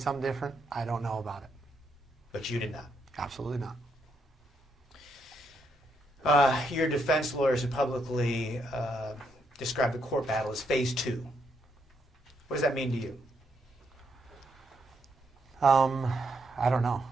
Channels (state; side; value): normal; both; correlation 0.77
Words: something different, I don't know about it. But you did not? Absolutely not. Your defense lawyers have publicly described the court battle as phase 2. What does that mean to you? I don't know.